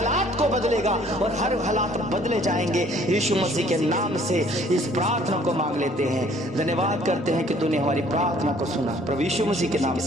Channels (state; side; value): normal; both; correlation 0.58